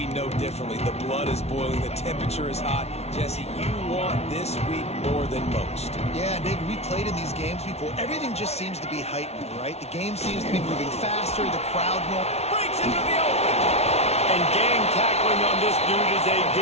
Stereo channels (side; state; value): right; late; 0.31 ms